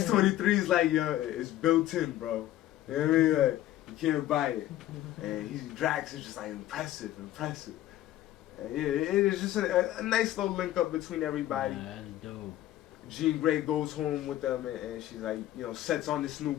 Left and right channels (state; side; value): quieter; right; 13.9 dB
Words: like, yo, it's built in, bro. You know what I mean? Like, you can't buy it. And Drax is just like, impressive. And it is just a nice little link up between everybody. That's dope. Jean Grey goes home with them, and she's like, you know, sets on this new